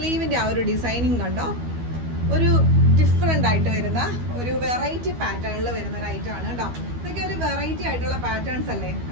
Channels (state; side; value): late; left; 12 ms